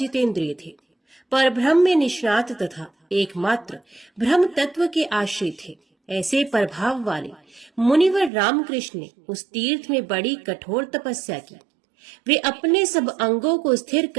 थे। पर ब्रह्म में निष्णात तथा एकमात्र ब्रह्म तत्व के आश्रित थे। ऐसे प्रभाव वाले मुनिवर रामकृष्ण ने उस तीर्थ में बड़ी कठोर तपस्या की। वे अपने सब अंगों को स्थिर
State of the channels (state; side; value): drops out; left; at 8.3 s